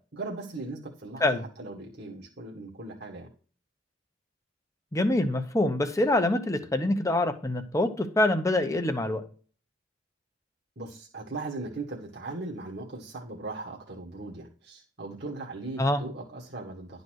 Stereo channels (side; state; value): both; normal; correlation 0.65